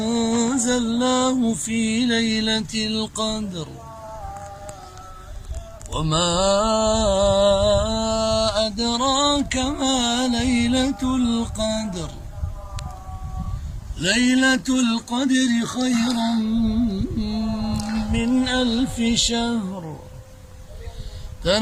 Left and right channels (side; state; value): both; identical; correlation 1.00